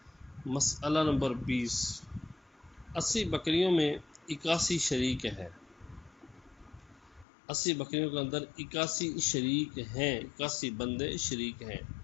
مسئلہ نمبر 20، 80 بکریوں میں 81 شریک ہے۔ 80 بکریوں کے اندر 81 شریک ہیں، 81 بندے شریک ہیں،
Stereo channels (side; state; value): right; drops out; at 7.2 s